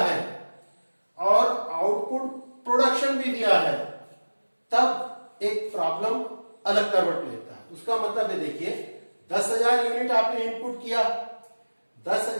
और आउटपुट प्रोडक्शन भी दिया है, तब एक प्रॉब्लम अलग करवट लेता है। उसका मतलब है देखिए 10,000 यूनिट आपने इनपुट किया,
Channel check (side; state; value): both; inverted; correlation -1.00